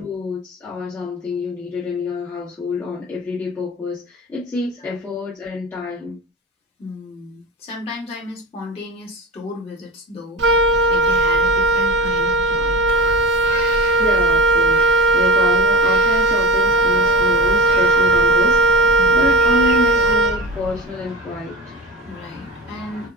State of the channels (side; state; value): both; normal; correlation 0.31